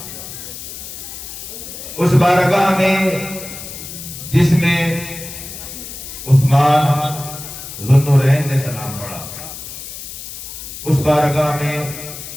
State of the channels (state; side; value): noise; left; hiss, 11 dB below the sound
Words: اس بارگاہ میں جس میں عثمان ذو النورین نے سلام پڑھا، اس بارگاہ میں